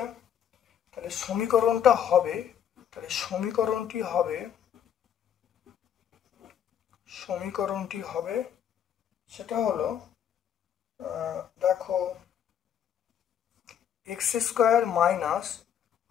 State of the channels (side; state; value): right; quieter; 9.2 dB